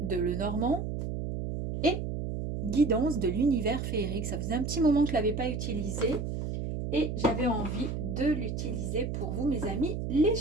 de Lenormand et guidance de l'univers féerique. Ça faisait un petit moment que je ne l'avais pas utilisé et j'avais envie de l'utiliser pour vous, mes amis, les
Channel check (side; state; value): right; noise; hum, 3 dB below the sound